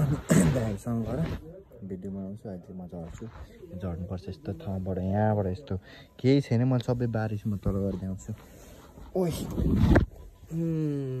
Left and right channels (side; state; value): both; identical; correlation 1.00